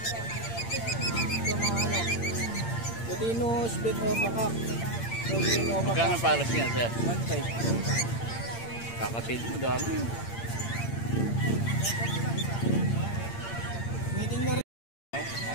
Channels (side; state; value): right; late; 8.7 ms